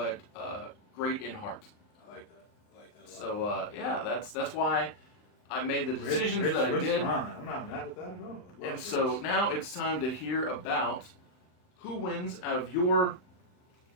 great in heart. I like that. So yeah, that's why I made the decisions that I did. I'm not mad at that at all. And so now it's time to hear about who wins out of your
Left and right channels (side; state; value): right; late; 39 ms